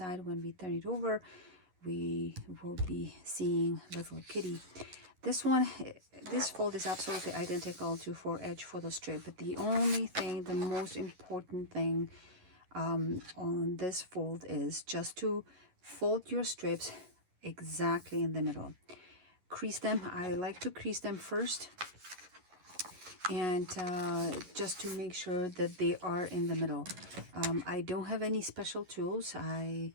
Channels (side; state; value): left; late; 11 ms